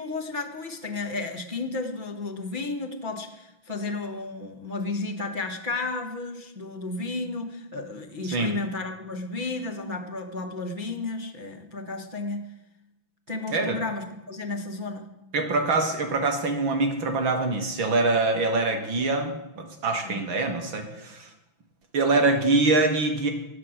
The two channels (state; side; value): late; left; 6.0 ms